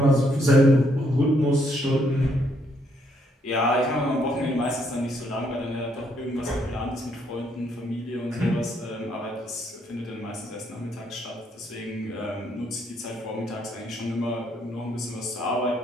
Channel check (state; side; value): normal; both; correlation 0.72